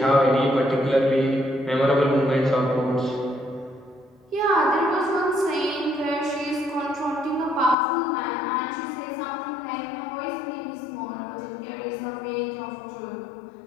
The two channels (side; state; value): right; drops out; at 7.8 s